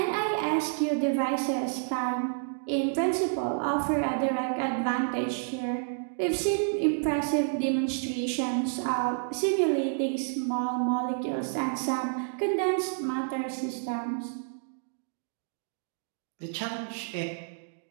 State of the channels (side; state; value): left; silent; digital silence